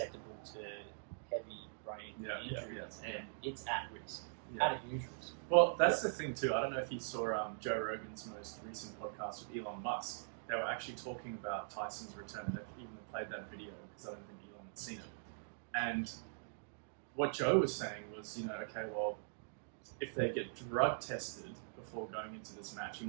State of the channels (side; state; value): left; silent; digital silence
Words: to heavy brain injuries, and it's at risk. At a huge risk. Well, that's the thing too. I don't know if you saw Joe Rogan's most recent podcast with Elon Musk. They were actually talking about Tyson's return. They even played that video because I don't think Elon had seen it. And what Joe was saying was, okay, well, if they get drug tested before going into this match, he